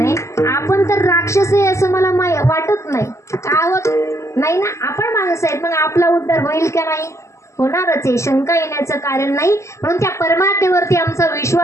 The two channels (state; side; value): late; right; 0.14 ms